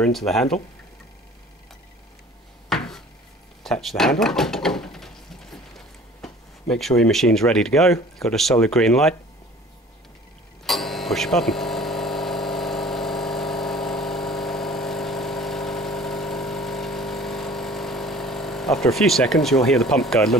into the handle, attach the handle, make sure your machine's ready to go, got a solid green light, push a button. After a few seconds you'll hear the pump go a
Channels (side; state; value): both; normal; correlation 0.47